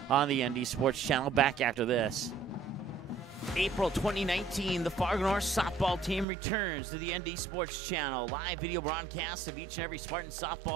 on the ND Sports Channel. Back after this. April 2019, the Fargo North softball team returns to the ND Sports Channel. Live video broadcasts of each and every Spartan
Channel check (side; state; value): left; drops out; at 6.2 s